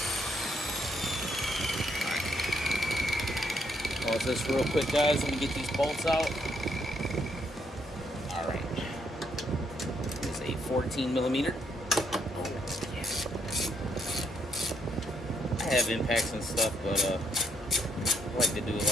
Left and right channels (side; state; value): both; normal; correlation 0.73